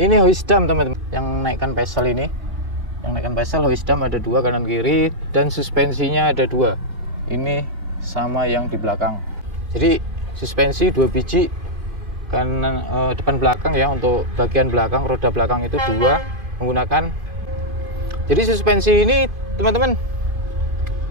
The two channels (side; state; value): left; late; 2.5 ms